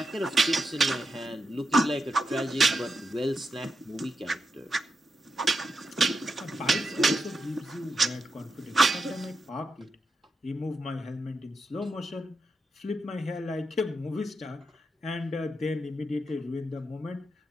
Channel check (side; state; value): both; normal; correlation 0.86